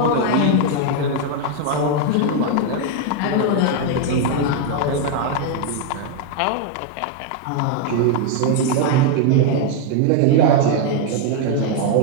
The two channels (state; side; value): different; both; correlation 0.00